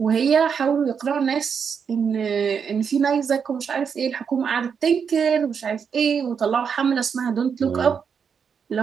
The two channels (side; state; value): left; quieter; 6.7 dB